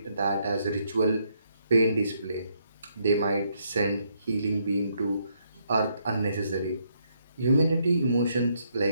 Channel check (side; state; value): both; inverted; correlation -0.74